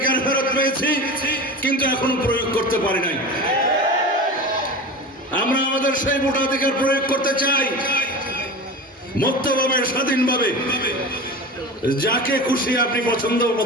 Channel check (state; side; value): normal; both; correlation 0.30